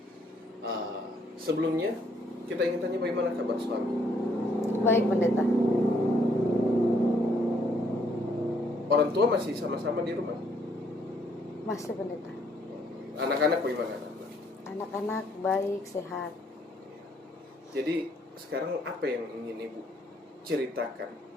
Sebelumnya kita ingin tanya bagaimana kabar suami. Baik, Pendeta. Orang tua masih sama-sama di rumah? Masih, Pendeta. Anak-anak bagaimana? Anak-anak baik, sehat. Jadi sekarang apa yang ingin Ibu ceritakan?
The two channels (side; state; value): both; normal; correlation 0.68